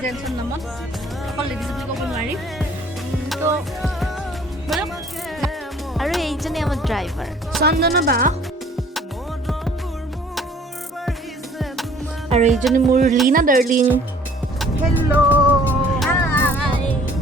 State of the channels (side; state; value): both; normal; correlation 0.54